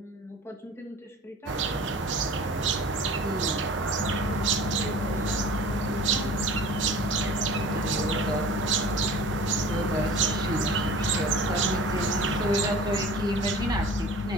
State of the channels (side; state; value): both; normal; correlation 0.42